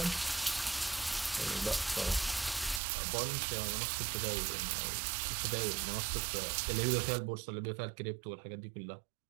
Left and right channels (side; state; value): left; drops out; at 2.8 s